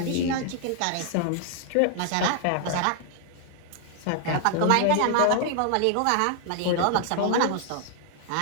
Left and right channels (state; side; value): different; both; correlation 0.00